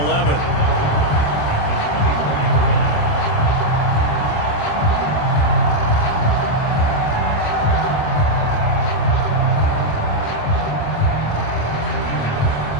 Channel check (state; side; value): late; right; 27 ms